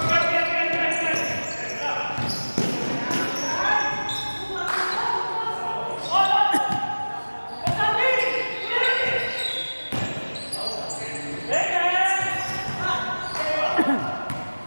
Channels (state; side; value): inverted; both; correlation -1.00